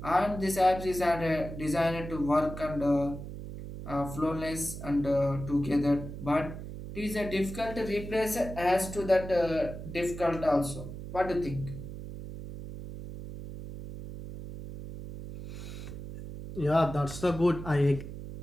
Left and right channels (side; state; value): right; noise; hum, 10 dB below the sound